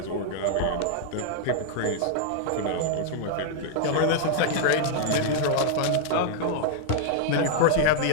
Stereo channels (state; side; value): different; both; correlation -0.01